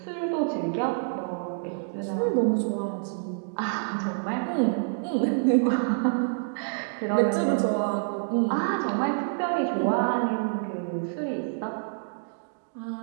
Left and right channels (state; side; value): silent; left; digital silence